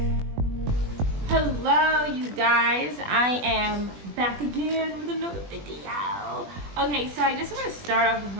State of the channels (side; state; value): left; late; 20 ms